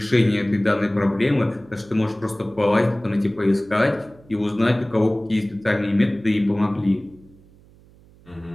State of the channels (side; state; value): right; noise; hum, 26 dB below the sound